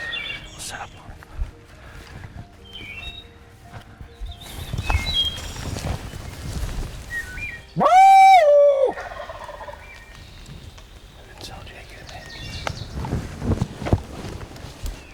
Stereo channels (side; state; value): both; identical; correlation 1.00